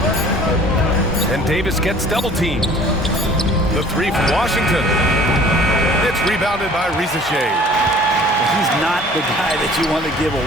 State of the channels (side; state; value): both; normal; correlation 0.50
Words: And Davis gets double teamed. The three from Washington. It's rebounded by Rizachet. He's not the guy that you want to give